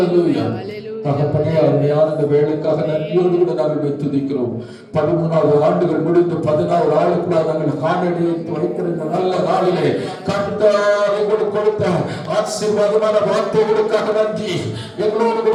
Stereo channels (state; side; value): identical; both; correlation 1.00